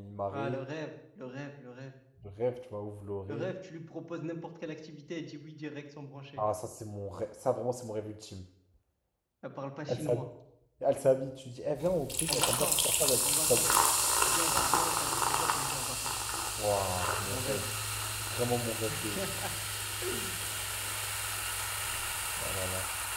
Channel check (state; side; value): identical; both; correlation 1.00